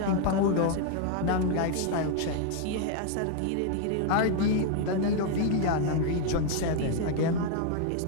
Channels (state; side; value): different; both; correlation 0.00